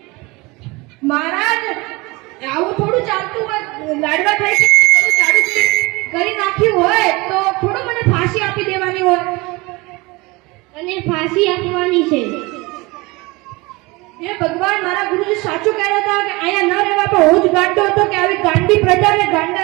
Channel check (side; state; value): left; quieter; 23.9 dB